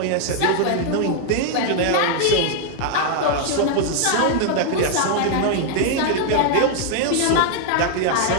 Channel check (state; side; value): different; both; correlation 0.00